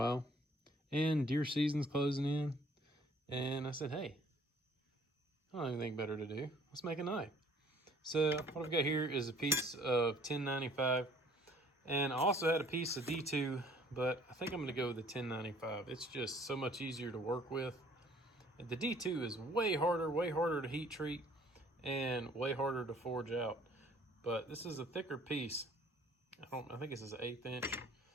and deer season's closing in, and I said, hey, I don't have anything better to do. Let's make a knife. So what I've got here is a piece of 1095. And I also had a piece of D2, but I think I'm going to go with the 1095. It's just so much easier to work with. The D2 is way harder to heat treat, and way harder to forge out. But this is a thicker piece. I think this is an 1/8 inch.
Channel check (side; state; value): both; normal; correlation 0.57